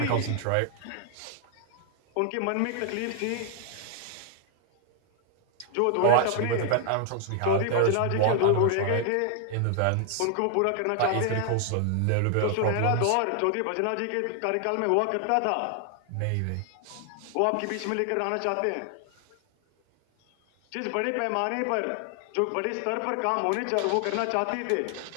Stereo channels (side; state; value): both; different; correlation 0.00